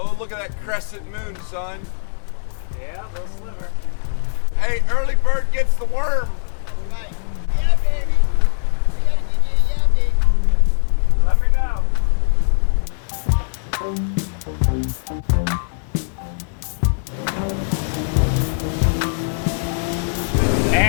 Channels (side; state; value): right; silent; digital silence